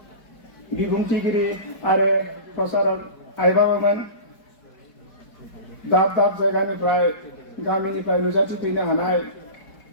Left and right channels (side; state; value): right; late; 4.7 ms